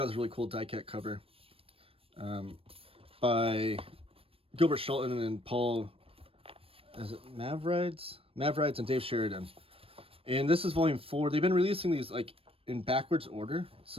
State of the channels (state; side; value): late; left; 0.28 ms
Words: this really cool die-cut cover by Gilbert Shelton and Paul, is it Mavrides and Dave Sheridan. And this is Volume 4. They've been releasing these like in backwards order.